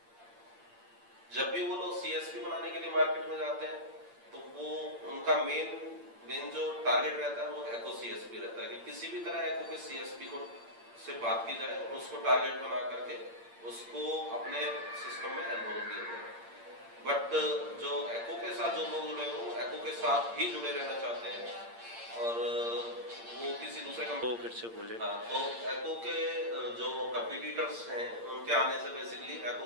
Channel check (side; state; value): left; late; 8.7 ms